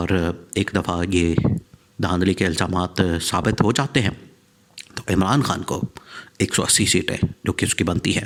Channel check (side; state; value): both; identical; correlation 1.00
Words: एक दफ़ा ये धांधली के इल्ज़ामात साबित हो जाते हैं तो इमरान खान को 180 सीटें जो कि उसकी बनती